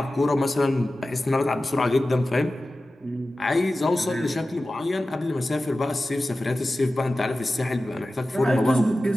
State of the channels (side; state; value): both; normal; correlation 0.95